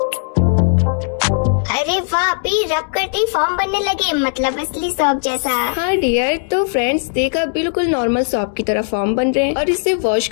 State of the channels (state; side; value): silent; right; digital silence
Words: अरे वाह भी, रब करते ही फॉर्म बनने लगे, मतलब असली सॉप जैसा। हाँ डियर, तो फ्रेंड्स देखा बिल्कुल नॉर्मल सॉप की तरह फॉर्म बन रहे हैं। और इसे वॉश